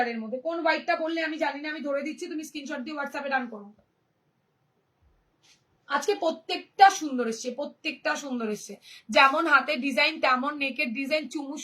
মধ্যে। কোন হোয়াইটটা বললে আমি জানি না, আমি ধরে দিচ্ছি, তুমি স্ক্রিনশট দিয়ে হোয়াটসঅ্যাপে ডান করো। আজকে প্রত্যেকটা সুন্দর এসছে, প্রত্যেকটা সুন্দর এসছে। যেমন হাতের ডিজাইন তেমন নেকের ডিজাইন, চুমু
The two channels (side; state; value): both; identical; correlation 1.00